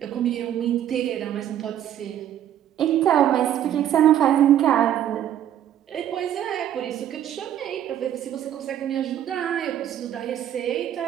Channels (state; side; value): quieter; left; 10.8 dB